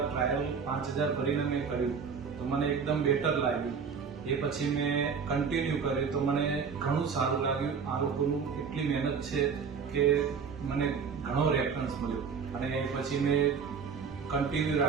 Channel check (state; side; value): quieter; left; 6.0 dB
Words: ટ્રાયલ 5000 ભરીને મેં કર્યું તો મને એકદમ બેટર લાગ્યું. એ પછી મેં કન્ટિન્યુ કર્યું તો મને ઘણું સારું લાગ્યું. આ લોકોનું એટલી મહેનત છે કે મને ઘણો રેફરન્સ મળ્યો અને એ પછી મેં કન્ટિન્યુ